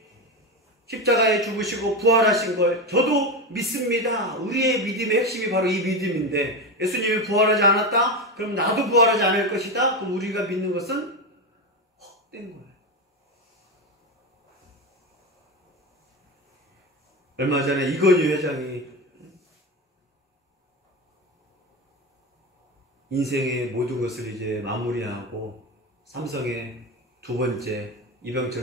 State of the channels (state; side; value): normal; both; correlation 0.17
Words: 십자가에 죽으시고 부활하신 걸 저도 믿습니다. 우리의 믿음의 핵심이 바로 이 믿음인데 예수님이 부활하지 않았다? 그럼 나도 부활하지 않을 것이다? 그럼 우리가 믿는 것은 헛된 거예요. 얼마 전에 이건희 회장이 인생의 모든 것을 이제 마무리하고 삼성의 두 번째